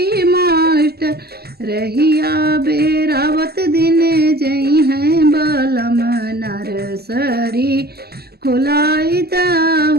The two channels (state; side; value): late; left; 0.46 ms